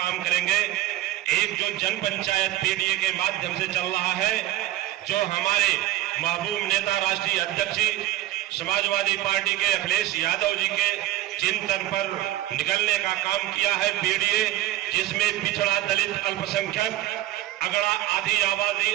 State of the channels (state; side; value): quieter; left; 15.1 dB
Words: करेंगे। एक जो जन पंचायत पीडीए के माध्यम से चल रहा है, जो हमारे महबूब नेता राष्ट्रीय अध्यक्ष समाजवादी पार्टी के अखिलेश यादव जी के चिंतन पर निकलने का काम किया है पीडीए, जिसमें पिछड़ा, दलित, अल्पसंख्यक, अगड़ा, आदि आबादी